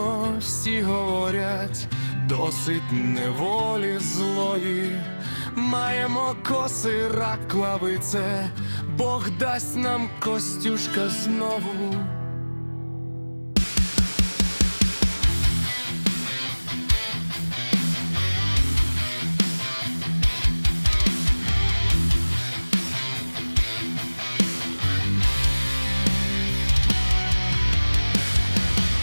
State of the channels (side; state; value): both; inverted; correlation -1.00